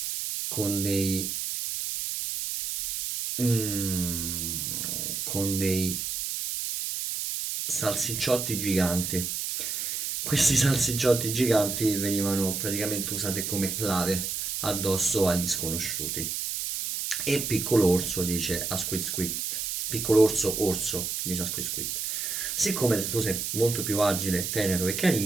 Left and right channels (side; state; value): right; noise; hiss, 3 dB below the sound